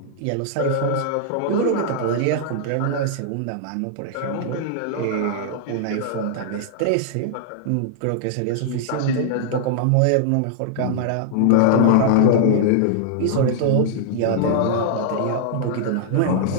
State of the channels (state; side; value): different; both; correlation -0.01